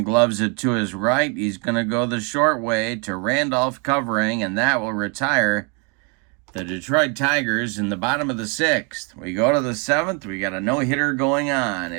gloves it to his right. He's going to go the short way to Randolph covering, and that will retire the Detroit Tigers in the bottom of the 6th. We go to the 7th. We got a no-hitter going on.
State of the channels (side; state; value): left; quieter; 34.9 dB